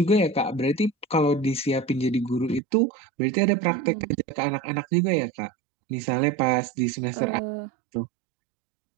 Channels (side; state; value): left; drops out; at 2.6 s